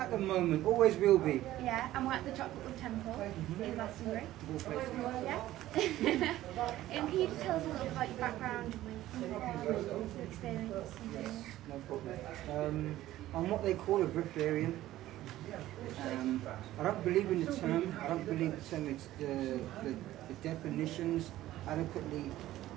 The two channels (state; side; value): quieter; left; 14.8 dB